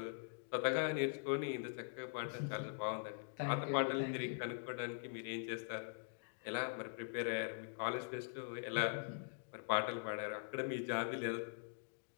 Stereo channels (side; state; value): right; silent; digital silence